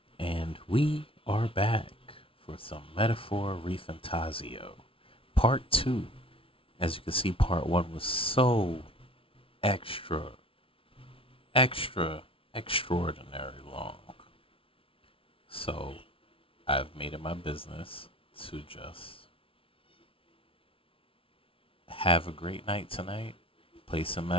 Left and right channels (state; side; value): late; right; 0.26 ms